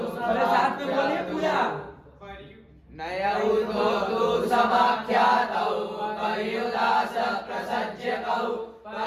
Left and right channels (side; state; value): both; identical; correlation 1.00